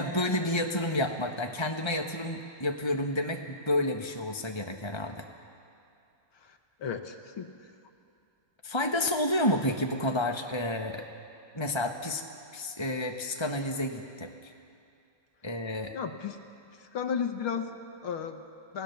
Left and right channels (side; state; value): right; late; 1.3 ms